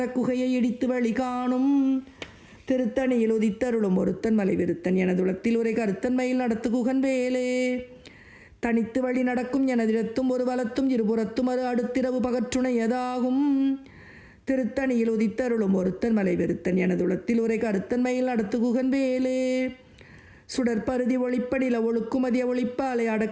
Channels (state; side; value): identical; both; correlation 1.00